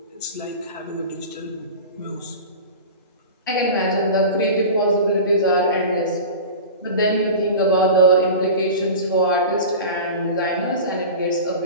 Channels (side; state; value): both; inverted; correlation -0.32